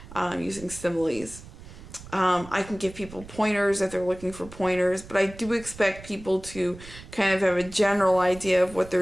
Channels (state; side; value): noise; right; rumble, 17 dB below the sound